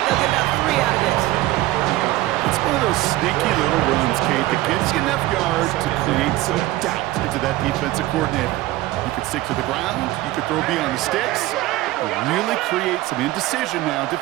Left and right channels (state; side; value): quieter; left; 17.0 dB